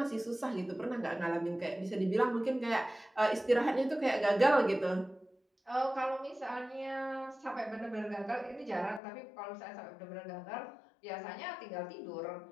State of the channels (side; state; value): right; drops out; at 9.0 s